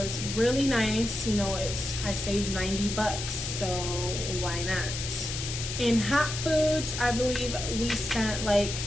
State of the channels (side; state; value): left; noise; hiss, 5 dB below the sound